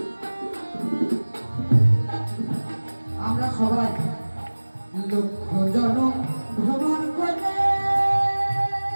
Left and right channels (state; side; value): inverted; both; correlation -1.00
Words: আমরা সবাই লক্ষ জনম ভ্রমণ করে